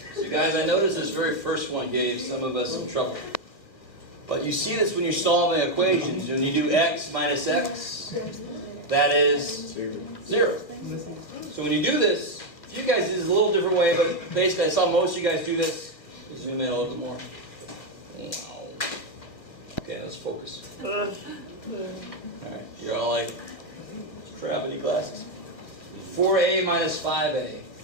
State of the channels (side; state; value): right; late; 1.5 ms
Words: So guys, I noticed this very first one gave some of us some trouble. But you see this when you're solving equations. When you do x minus x, that is 0. So when you do this, you guys do this a little different way, but basically I saw most of you guys do this. Zoom in a little bit more. Okay, let's focus. Alright, you're all like gravity glasses. 4a minus 5a.